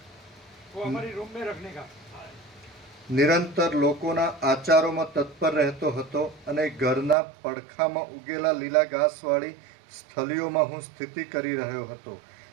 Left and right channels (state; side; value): drops out; left; at 7.2 s